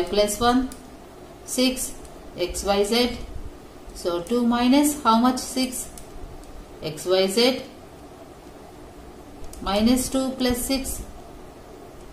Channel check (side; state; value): both; identical; correlation 1.00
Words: plus 1. 6. X, y, z. So 2 minus how much? 6. X, y, z. Minus 2 plus 6.